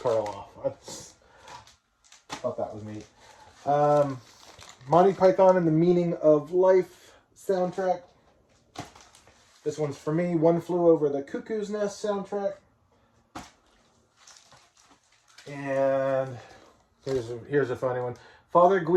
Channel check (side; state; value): both; identical; correlation 1.00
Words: I thought that was neat. Monty Python and the Meaning of Life soundtrack. This one's for me. One Flew Over the Cuckoo's Nest soundtrack. And here's a funny one. Father